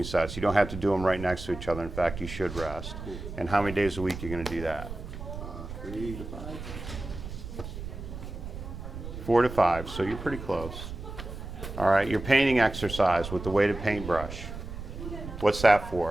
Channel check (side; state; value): right; noise; rumble, 10 dB below the sound